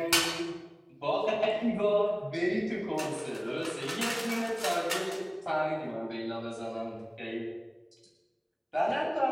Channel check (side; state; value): both; identical; correlation 1.00